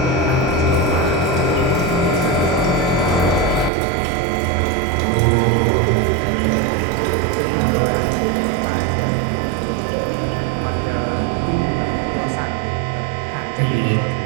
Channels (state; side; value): drops out; left; at 3.7 s